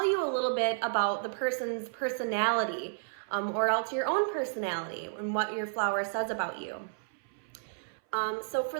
you a little bit about the person's personality, or else your own personality and what your flower says about you. So for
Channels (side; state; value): left; silent; 57 dB below the other